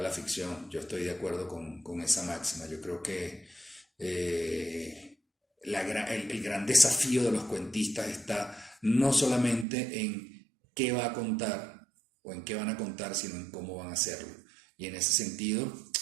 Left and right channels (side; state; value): left; drops out; at 9.7 s